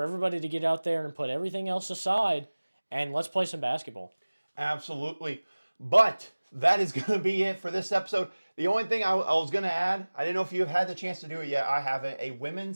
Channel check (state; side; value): inverted; both; correlation -1.00